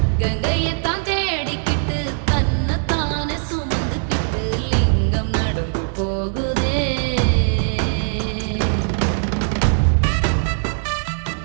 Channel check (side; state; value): left; silent; digital silence